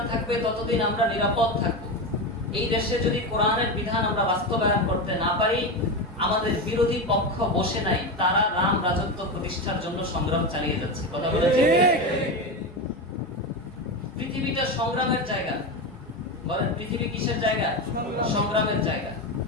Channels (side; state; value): both; normal; correlation 0.17